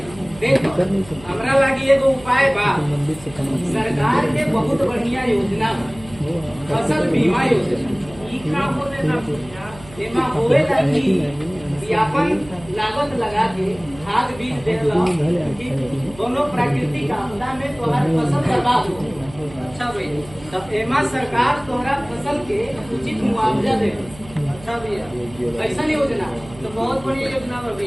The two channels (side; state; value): right; noise; hum, 19 dB below the sound